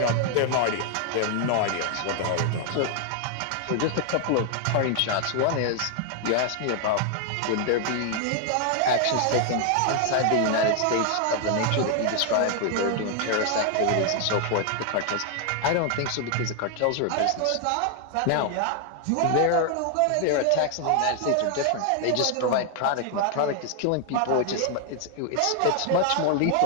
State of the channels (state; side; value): different; both; correlation 0.00